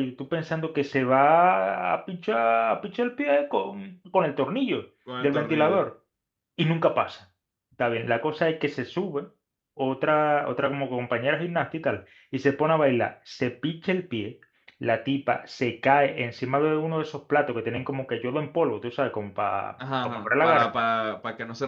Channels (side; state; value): both; identical; correlation 1.00